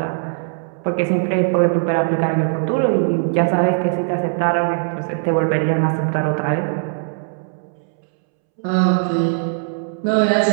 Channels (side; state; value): left; silent; 66 dB below the other